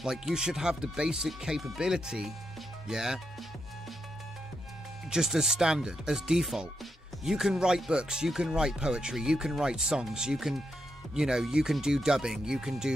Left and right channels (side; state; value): both; normal; correlation 0.83